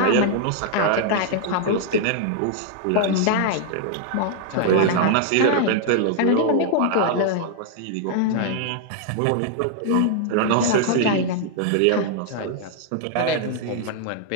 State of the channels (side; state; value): both; different; correlation 0.00